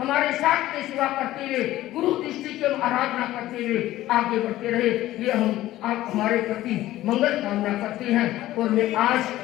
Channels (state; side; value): quieter; right; 15.2 dB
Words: साथ में सेवा करते हुए, गुरु दृष्टि की आराधना करते हुए आगे बढ़ते रहे, ये हम आप हमारे प्रति मंगल कामना करते हैं। और मैं आज